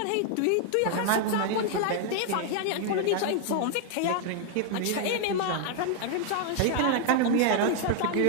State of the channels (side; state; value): both; different; correlation 0.00